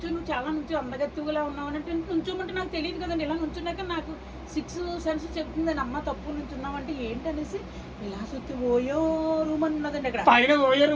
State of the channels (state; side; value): identical; both; correlation 1.00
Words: చాలా అందగత్తుగా ఉన్నావు అంటే నుంచోమంటే నాకు తెలియదు కదండి. ఇలా నుంచున్నాక నాకు 6 సెన్స్ చెప్తుందని అమ్మ తప్పు నుంచున్నామంటే ఏంటనేసి ఇలా చూస్తే ఓయో రూమ్ అని ఉన్నదండి అక్కడ, పైన ఓయో